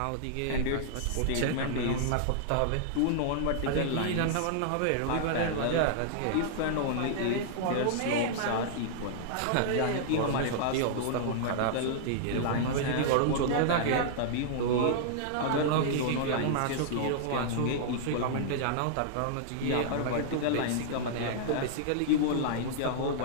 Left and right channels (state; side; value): different; both; correlation -0.01